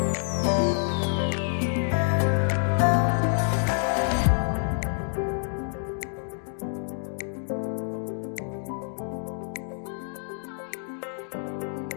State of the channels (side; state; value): right; silent; digital silence